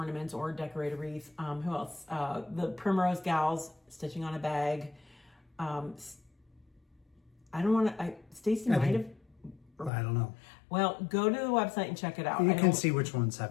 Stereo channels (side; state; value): right; drops out; at 9.9 s